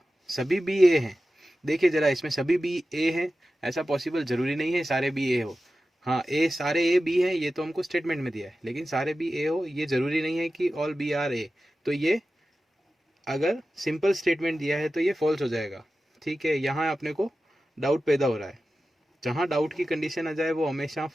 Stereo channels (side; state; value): both; normal; correlation 0.94